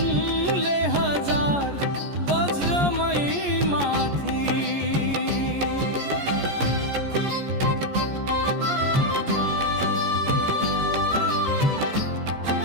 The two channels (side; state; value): left; late; 14 ms